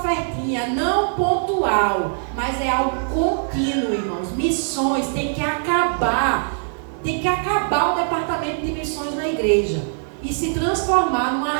não pontual, mas é algo contínuo, irmãos. Missões tem que acabar o departamento de missões na igreja e se transformar numa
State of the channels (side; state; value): left; silent; digital silence